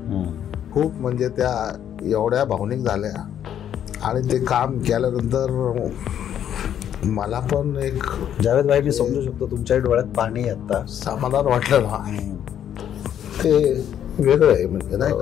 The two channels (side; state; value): right; quieter; 9.9 dB